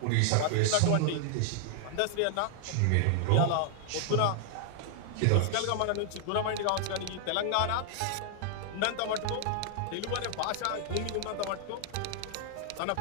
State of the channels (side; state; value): both; different; correlation 0.00